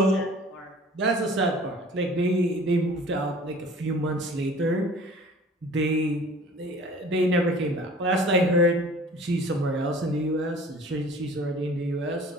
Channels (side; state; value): both; normal; correlation 0.47